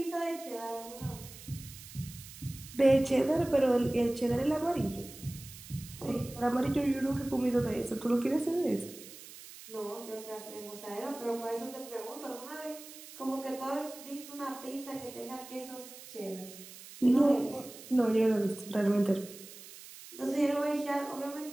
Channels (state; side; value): noise; right; hiss, 16 dB below the sound